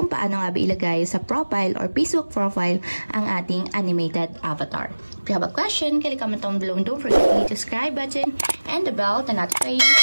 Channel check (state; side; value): inverted; both; correlation -1.00